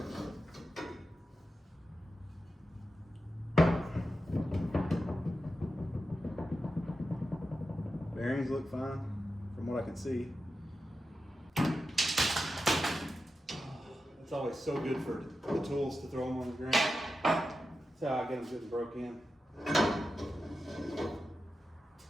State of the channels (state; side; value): normal; both; correlation 0.90